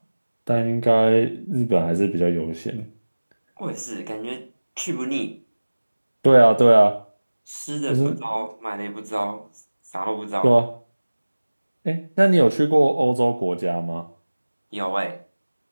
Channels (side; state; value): both; inverted; correlation -1.00